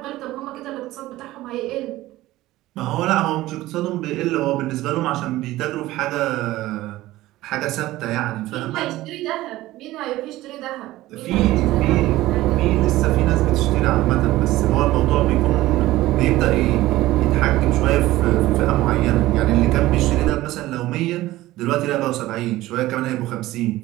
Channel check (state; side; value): quieter; left; 16.8 dB